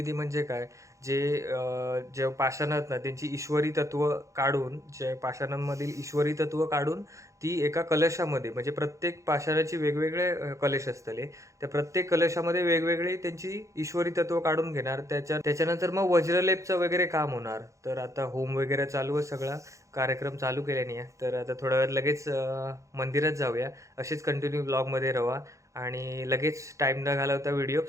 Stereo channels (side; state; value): left; late; 0.15 ms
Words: म्हणजे काय, जे पाषाणात ना त्यांची ईश्वरी तत्व काढून, जे पाषाणांमधील ईश्वरी तत्व काढून ती एका कलशामध्ये, म्हणजे प्रत्येक पाषाणाची वेगवेगळे कलश असतले, त्या प्रत्येक कलशामध्ये वेगवेगळे त्यांची ईश्वरी तत्व काढून घेणार. त्याच्यानंतर मग वज्रलेपचं वगैरे काम होणार. तर आता होम वगैरे चालू आहे, सगळा कार्यक्रम चालू केल्याने आहे. तर आता थोड्या वेळात लगेच मंदिरात जाऊया. असेच कंटिन्यू ब्लॉगमध्ये राहा आणि लगेच टाईम न घालवता व्हिडिओ